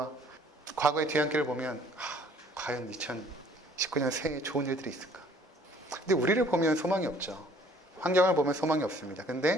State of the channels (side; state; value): both; normal; correlation 0.57